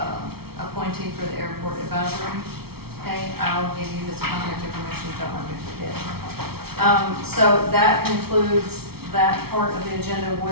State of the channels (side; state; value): left; late; 0.95 ms